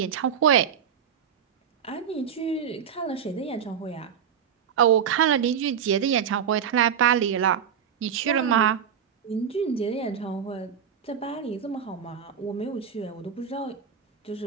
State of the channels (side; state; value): left; quieter; 8.0 dB